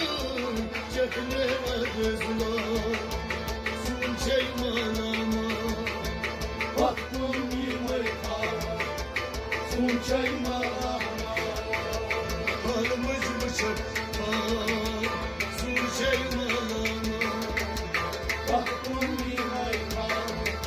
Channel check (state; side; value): identical; both; correlation 1.00